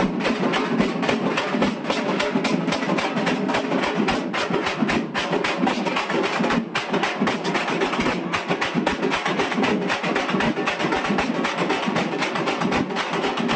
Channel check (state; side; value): identical; both; correlation 1.00